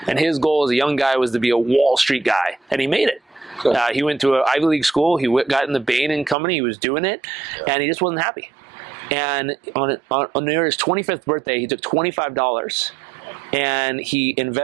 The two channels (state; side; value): drops out; left; at 6.4 s